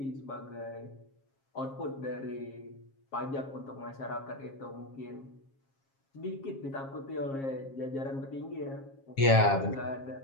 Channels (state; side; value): late; right; 7.4 ms